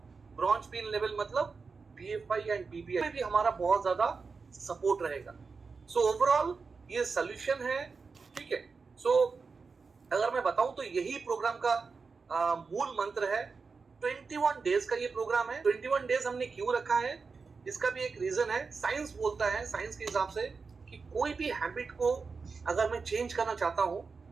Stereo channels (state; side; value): quieter; left; 4.8 dB